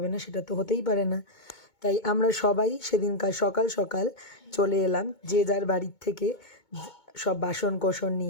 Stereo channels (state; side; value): late; right; 2.2 ms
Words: না, সেটা তো হতেই পারে না। তাই আমরা সবাই সেদিনকার সকাল সকাল চলে এলাম যে যার বাড়ির থেকে সব বাসন কোসন